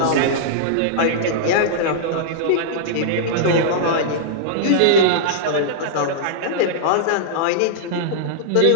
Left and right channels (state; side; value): different; both; correlation -0.03